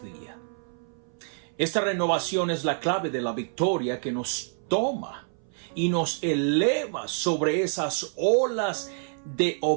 Esta renovación es la clave de la victoria que nos toma y nos eleva sobre esas olas de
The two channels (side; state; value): left; silent; 59 dB below the other